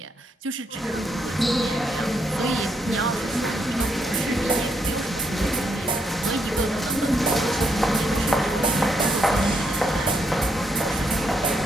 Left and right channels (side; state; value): both; normal; correlation 0.77